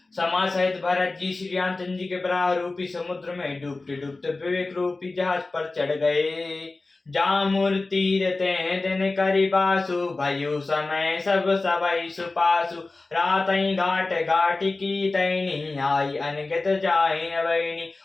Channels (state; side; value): quieter; right; 3.4 dB